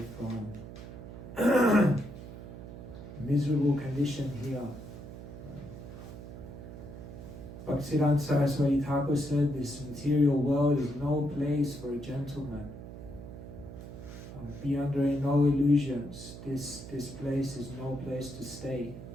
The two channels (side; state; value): right; noise; hum, 12 dB below the sound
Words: from miserable condition here. Bhaktivedanta Saraswati Thakur said, this material world is no place for a gentleman. Be under no illusions. This place is no place to stay.